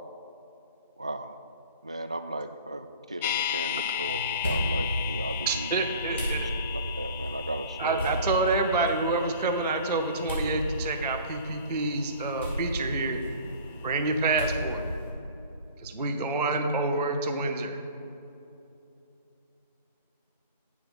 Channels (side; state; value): both; inverted; correlation -0.43